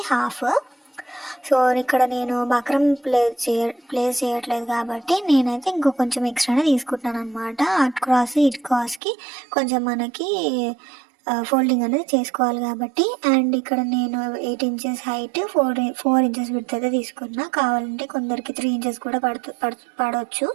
హాఫ్. సో ఇక్కడ నేను బక్రం ప్లేస్ చేయట్లేదు కాబట్టి నేనైతే ఇంకో కొంచెం ఎక్స్ట్రానే తీసుకుంటున్నాను అనమాట. అట్ క్రాస్ ఇట్ క్రాస్కి కొంచెం మనకి ఫోల్డింగ్ అనేది చేసుకోవాలి కాబట్టి. అండ్ ఇక్కడ నేను 8 ఇంచెస్ హైట్, 4 ఇంచెస్ విడ్త్ అయితే తీసుకున్నా. కావాలంటే కొందరికి 3 ఇంచెస్ కూడా పడవచ్చు,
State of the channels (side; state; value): left; drops out; at 9.0 s